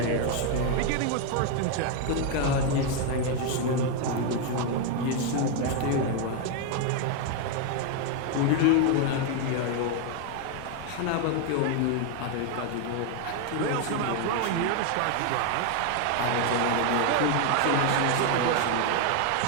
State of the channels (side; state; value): both; different; correlation 0.01